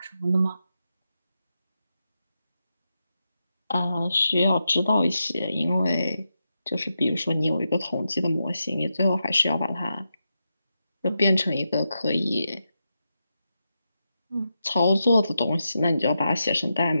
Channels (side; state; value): both; inverted; correlation -0.87